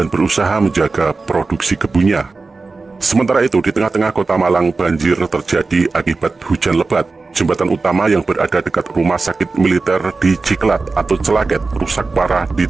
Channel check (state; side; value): quieter; left; 3.9 dB